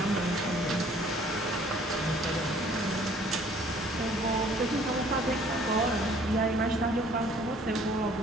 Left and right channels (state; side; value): normal; both; correlation 0.56